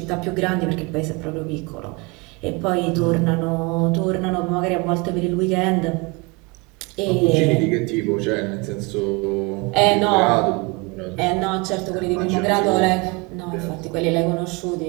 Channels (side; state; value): left; quieter; 27.5 dB